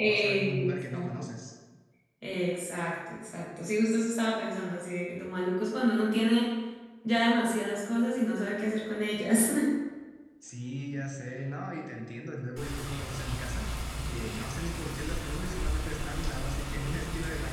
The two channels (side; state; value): both; identical; correlation 1.00